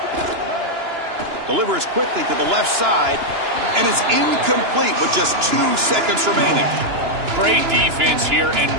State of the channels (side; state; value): left; late; 2.9 ms